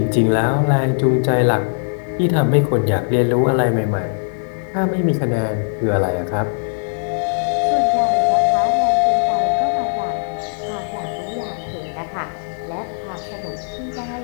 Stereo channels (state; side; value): silent; right; 64 dB below the other